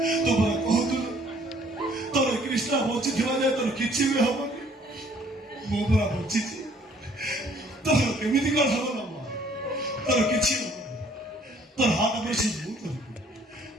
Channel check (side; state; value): both; normal; correlation 0.60